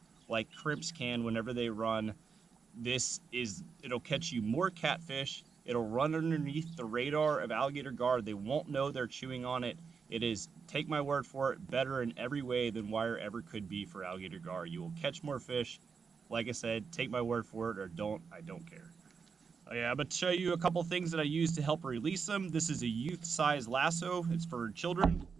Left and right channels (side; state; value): left; quieter; 5.6 dB